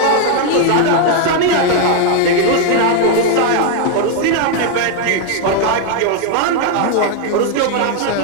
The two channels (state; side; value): different; both; correlation 0.00